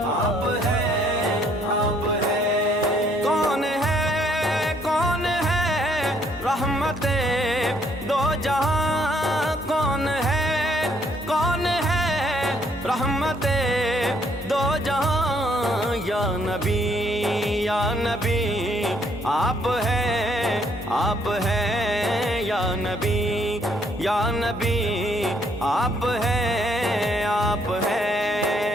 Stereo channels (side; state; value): both; normal; correlation 0.68